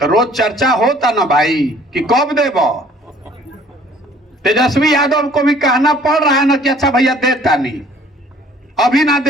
रोज चर्चा होता ना भाई कि कब देबो। तेजस्वी यादव को भी कहना पड़ रहा है ना कि अच्छा भैया देता नहीं, अभी ना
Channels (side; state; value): both; normal; correlation 0.55